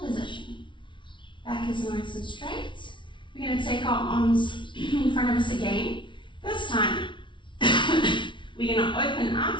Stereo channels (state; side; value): late; right; 0.24 ms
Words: position. Back is nice and straight. We're going to take our arms in front of us again. This time, we're going to open